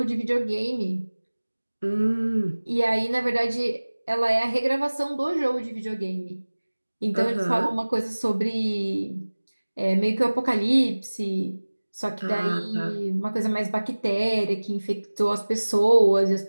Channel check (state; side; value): inverted; both; correlation -1.00